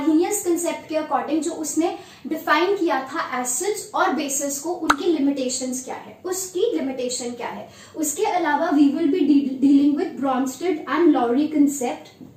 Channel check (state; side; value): identical; both; correlation 1.00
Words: concept के अकॉर्डिंग जो उसने डिफाइन किया था एसिड्स और बेसिस को, उनकी लिमिटेशंस क्या है, उसकी लिमिटेशन क्या है. उसके अलावा we will be dealing with Bronsted and Lowry